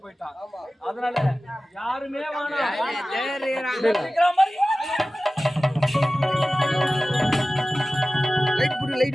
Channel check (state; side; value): normal; both; correlation 0.96